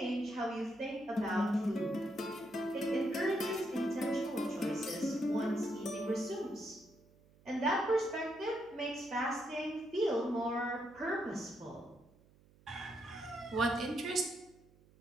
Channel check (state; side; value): noise; right; hum, 28 dB below the sound